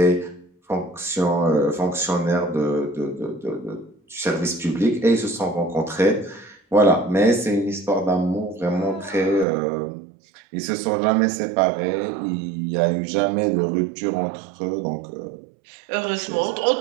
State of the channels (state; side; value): drops out; left; at 9.5 s